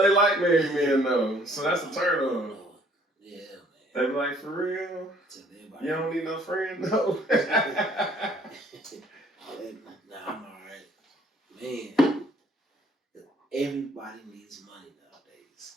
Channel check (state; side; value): normal; both; correlation 0.59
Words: like married men though, so that's a turn on. Yeah, man. They be like, for real? You don't need no friend though. Nah, I'm alright. Man, everybody needs money nowadays.